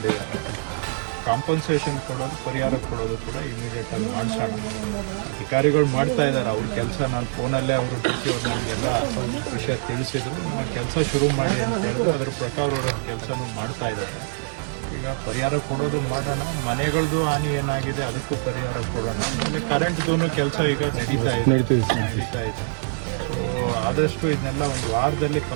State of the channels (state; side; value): silent; left; digital silence